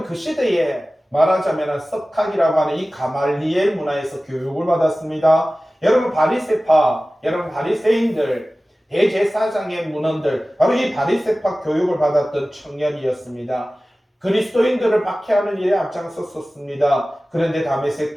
그 시대에 말하자면 석학이라고 하는 이 가말리엘 문화에서 교육을 받았습니다. 여러분, 바리새파, 여러분 바리새인들, 대제사장의 문헌들, 바로 이 바리새파 교육을 받았던 청년이었습니다. 그리스도인들을 박해하는 일에 앞장섰었습니다. 그런데 다메섹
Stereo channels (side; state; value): both; normal; correlation 0.97